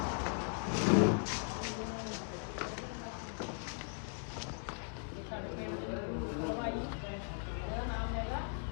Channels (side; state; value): right; silent; 52 dB below the other